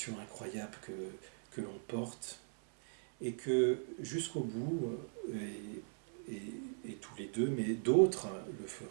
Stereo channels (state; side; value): silent; left; 52 dB below the other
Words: incroyable que l'on porte, et que jusqu'au bout, et tous les deux, mais d'autres le